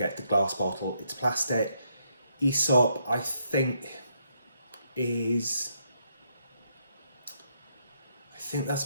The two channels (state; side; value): inverted; both; correlation -0.76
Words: the glass bottle, it's plastic. Aesop, I think that's